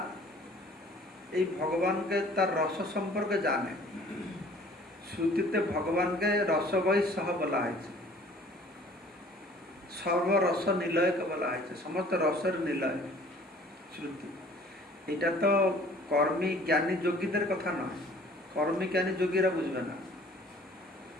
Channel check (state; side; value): normal; both; correlation 0.52